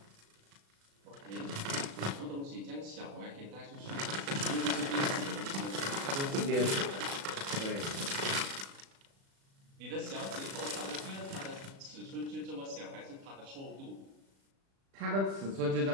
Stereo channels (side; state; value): left; late; 36 ms